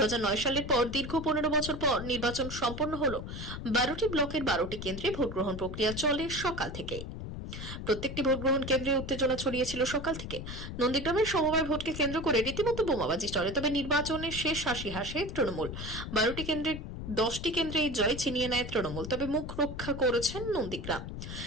সালের পর দীর্ঘ 15 বছর পর নির্বাচন সম্পন্ন হলো। 12টি ব্লকের 12টি কেন্দ্রে ভোটগ্রহণ প্রক্রিয়া চলে সকাল থেকে। প্রত্যেকটি ভোটগ্রহণ কেন্দ্রে উত্তেজনা ছড়িয়েছিল সকাল থেকে। নন্দীগ্রামের সমবায় ভোটকে কেন্দ্র করে রীতিমতো বোমাবাজি চলে। তবে নির্বাচনের শেষ হাসি হাসে তৃণমূল। 12টি কেন্দ্রে 10টি কেন্দ্রে এই জয় ছিনিয়ে নেয় তৃণমূল, তবে মুখ রক্ষা করেছেন নন্দীগ্রাম।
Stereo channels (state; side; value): noise; left; rumble, 8 dB below the sound